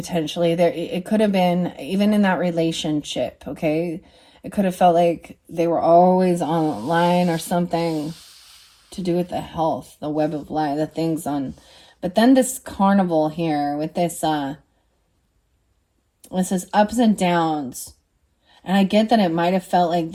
It could have been, even in that relationship, okay? It could have felt like they were always online or something to do with the health, the web of life, the things on. But then this carnival here with this says ups and downs. And I get that it might have felt like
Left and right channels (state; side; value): identical; both; correlation 1.00